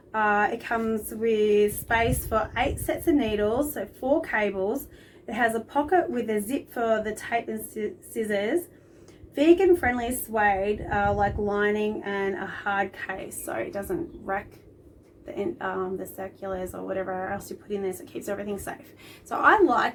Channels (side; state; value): both; identical; correlation 1.00